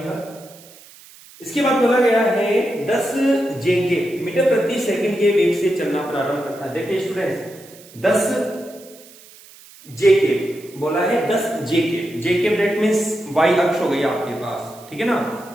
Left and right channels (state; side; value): noise; right; hiss, 22 dB below the sound